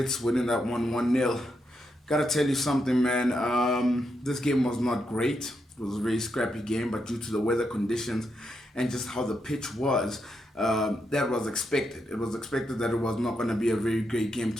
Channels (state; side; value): normal; both; correlation 0.82